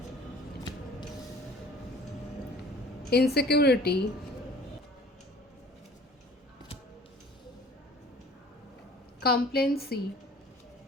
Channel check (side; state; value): both; normal; correlation 0.48